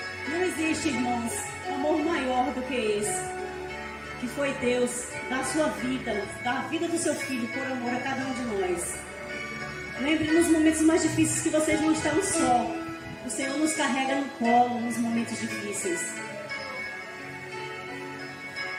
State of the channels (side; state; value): both; identical; correlation 1.00